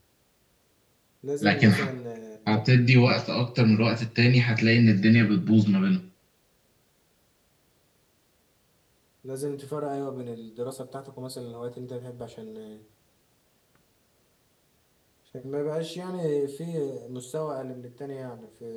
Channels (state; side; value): identical; both; correlation 1.00